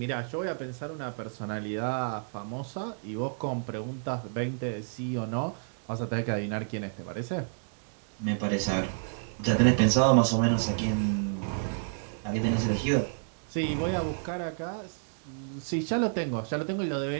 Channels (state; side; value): silent; left; 58 dB below the other